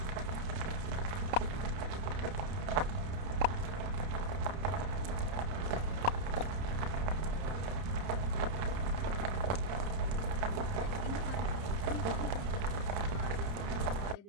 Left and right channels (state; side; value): late; left; 30 ms